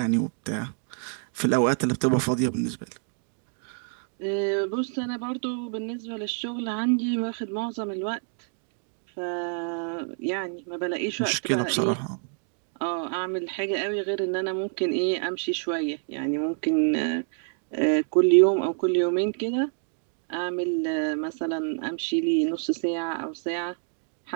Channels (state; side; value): silent; left; 56 dB below the other